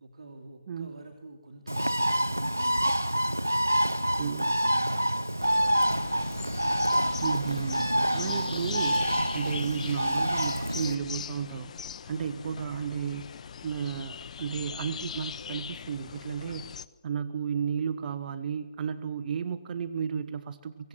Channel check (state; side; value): inverted; both; correlation -0.87